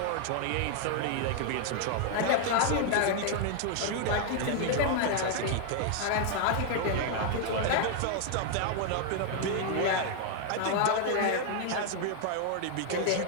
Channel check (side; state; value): both; different; correlation 0.00